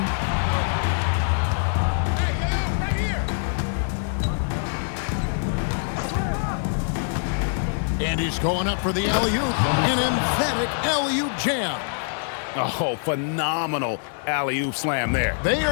And he's going up for the alley-oop. An emphatic alley-oop jam. Oh, phenomenal alley-oop slam there. They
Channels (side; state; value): right; silent; 56 dB below the other